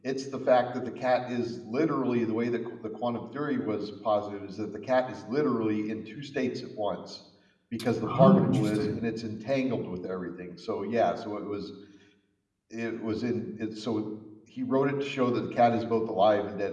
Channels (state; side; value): identical; both; correlation 1.00